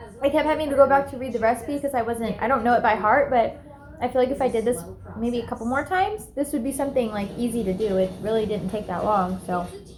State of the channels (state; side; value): identical; both; correlation 1.00